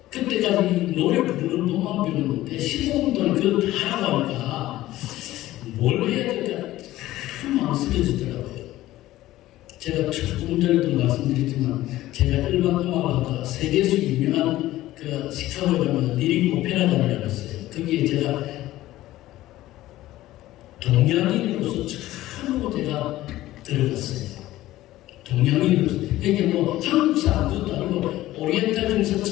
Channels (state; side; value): quieter; right; 15.7 dB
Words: 그때까지 노래 부르는 것만 배웠는데 15분 동안 그걸 다 하고 하니까 뭘 해야 될까 참 망설여지더라고요. 제가 조금 전에도 말씀드렸지만 제가 일반 음악을 하다가 세계에서 유명한 그 시카고에 가면 리릭 오페라단이라고 있어요. 거기에 제가 동양인으로서 처음으로 제가 들어갔어요. 동양인으로서. 이게 뭐 한국 사람도 아니고 오리엔탈 중에서